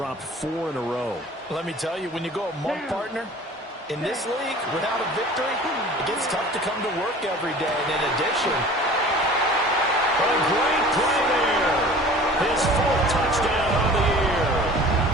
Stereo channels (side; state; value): both; normal; correlation 0.44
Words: 4 in a row. Let me tell you, when you go a month partner, in this league, without a victory, it gets tough to come to work every day. And in addition, a great play there. His 4th touchdown on the year.